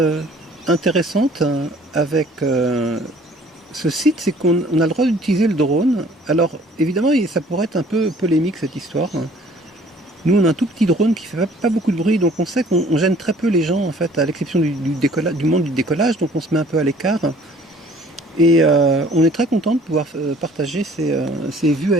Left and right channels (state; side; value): normal; both; correlation 0.54